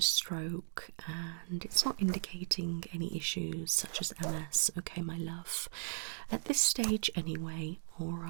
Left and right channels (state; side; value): silent; left; digital silence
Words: stroke and it's not indicating any issues such as MS. Okay, my love. At this stage, anyway, all